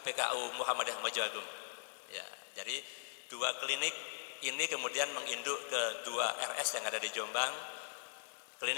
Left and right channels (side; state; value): right; silent; digital silence